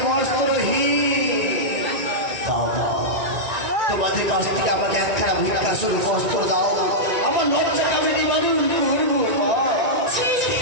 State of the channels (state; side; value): late; left; 1.9 ms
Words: বস্ত্রহীন। তোমাদের কাছ থেকে আমাকে একখানা ভিক্ষা শুরু বস্ত্র দাও, আমার লজ্জা আমি নিবারণ করবো।